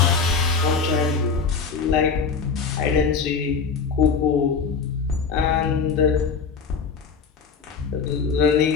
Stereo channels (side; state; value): right; quieter; 5.5 dB